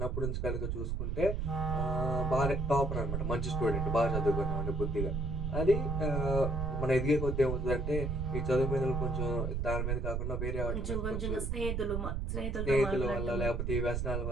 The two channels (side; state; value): right; noise; rumble, 1 dB below the sound